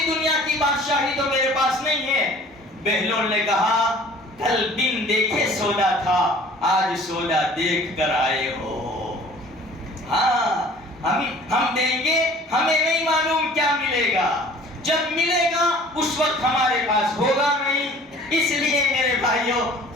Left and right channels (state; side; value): normal; both; correlation 0.49